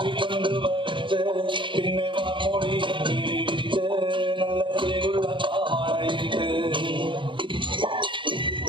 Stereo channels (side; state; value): left; late; 0.24 ms